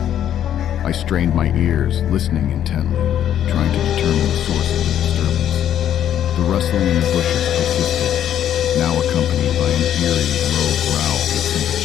I strained my ears, listening intently, trying to determine determine the source of the disturbance. The rustling in the bushes persisted, now accompanied by an eerie, low growl that sent a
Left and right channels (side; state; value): right; quieter; 10.4 dB